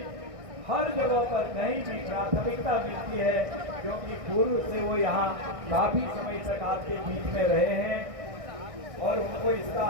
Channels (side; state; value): left; late; 1.6 ms